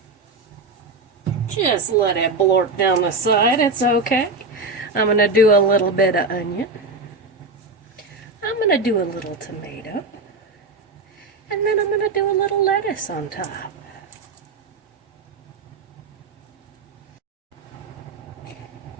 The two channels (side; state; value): left; quieter; 3.6 dB